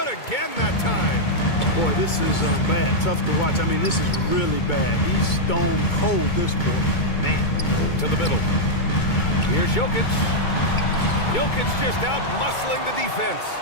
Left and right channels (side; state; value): right; late; 2.2 ms